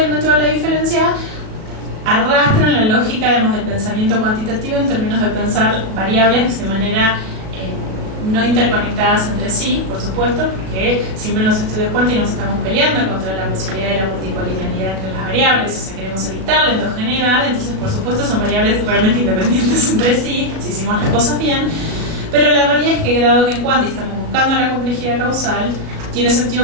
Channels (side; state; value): left; late; 36 ms